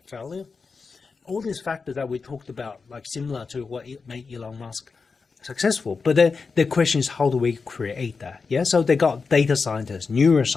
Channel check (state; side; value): quieter; right; 4.8 dB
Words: failure. All these factors that we talked about, like similar to what made Elon Musk successful. But then the question is, how do we create that? Yeah, so they got data scientists,